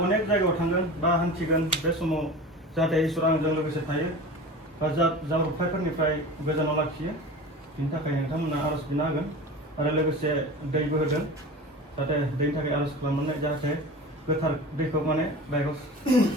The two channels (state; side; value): normal; both; correlation 0.34